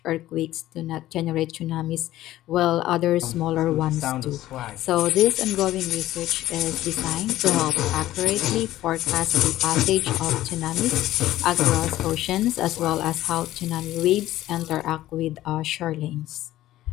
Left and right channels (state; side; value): quieter; right; 14.8 dB